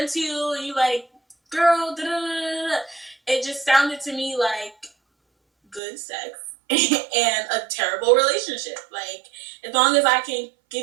to you and you like, girl, da da da da. It just sounded to me like good sex and a terrible relationship. Like, as long as I can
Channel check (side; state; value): left; drops out; at 5.8 s